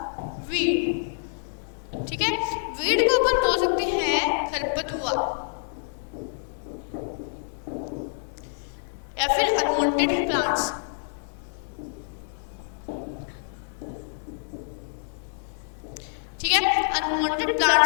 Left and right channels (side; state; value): right; silent; digital silence